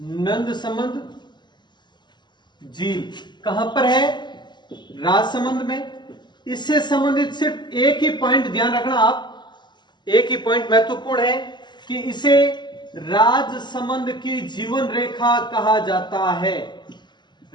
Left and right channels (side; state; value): right; late; 0.21 ms